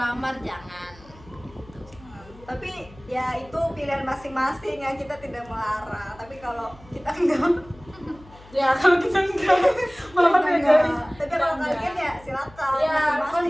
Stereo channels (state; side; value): noise; left; hum, 23 dB below the sound